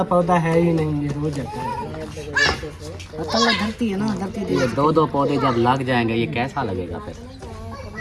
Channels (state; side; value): identical; both; correlation 1.00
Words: पौधा है ही नहीं, ये रोज जाता है। धरती है ना धरती ये 2-2 पौधे जब लग जाएंगे ये कैसा लगेगा फिर?